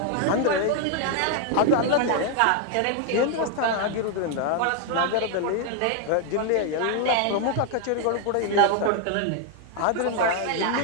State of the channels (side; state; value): both; different; correlation 0.00